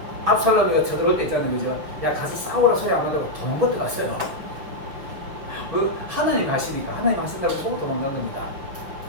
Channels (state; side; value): late; left; 6.2 ms